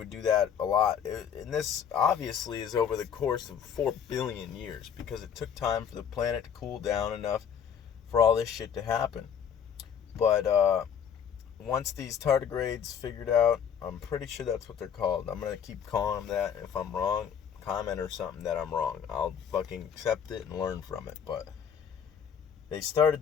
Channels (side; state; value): right; quieter; 8.0 dB